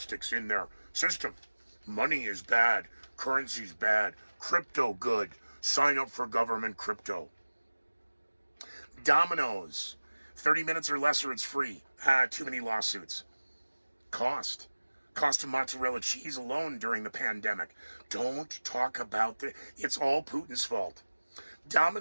in their system. Money is bad. Currency's bad. Crypto good. Sign up for government crypto. Domino's. 30 minutes or less or it's free. Too many lawsuits. Cost of mozzarella cheese alone during the pandemic. Don't talk about it's all Putin's fault.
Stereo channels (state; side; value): inverted; both; correlation -1.00